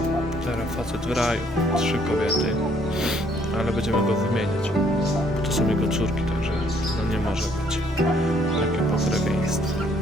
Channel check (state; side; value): normal; both; correlation 0.65